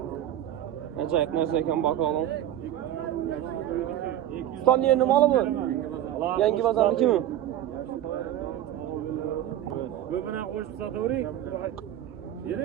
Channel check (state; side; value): quieter; left; 12.0 dB